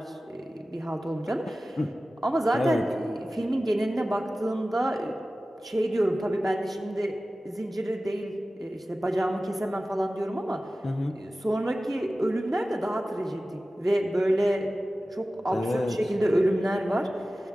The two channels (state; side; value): normal; both; correlation 0.96